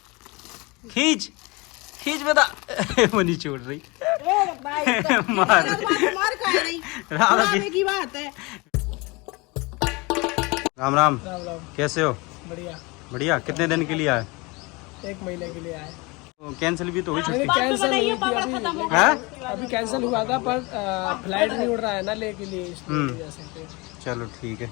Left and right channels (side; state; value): right; quieter; 25.9 dB